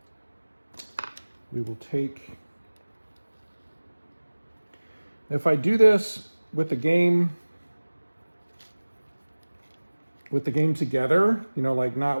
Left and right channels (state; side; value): inverted; both; correlation -1.00